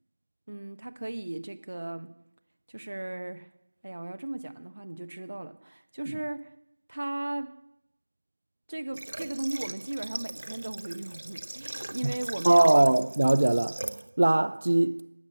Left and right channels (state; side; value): inverted; both; correlation -1.00